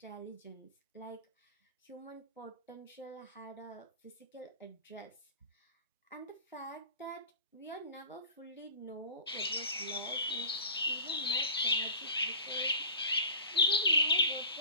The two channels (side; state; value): both; inverted; correlation -0.38